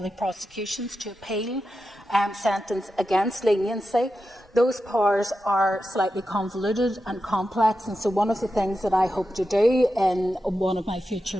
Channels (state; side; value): normal; both; correlation 0.90